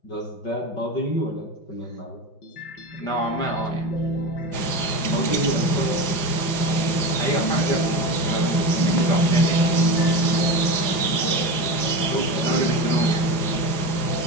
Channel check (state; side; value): late; right; 4.9 ms